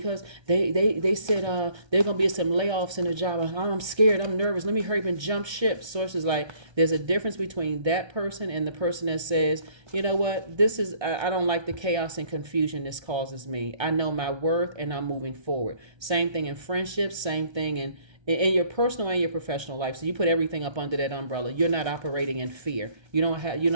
they said there gonna be some layoffs in the job. I'm scared. I'm nervous. Let me hurry up and jump ship. Source is like, there's a difference between that person and the person that says, you know what, this is I don't like the chaos and confusion this causes me. I know my worth and I'm moving forward. Same thing in friendships. Same thing in your personal and your professional life. So you put everything up under that umbrella. You're not operating in fear. You're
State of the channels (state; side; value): late; left; 1.3 ms